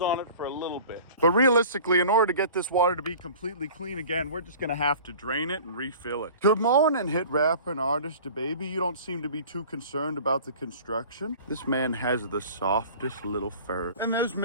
it for a little bit. But realistically, in order to get this water to be completely clean again, we're just gonna have to drain it and refill it. Good morning, hit rapper and artist DeBaby. You don't seem to be too concerned about the construction. This man has the softest little fur. And there's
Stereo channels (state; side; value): inverted; both; correlation -0.43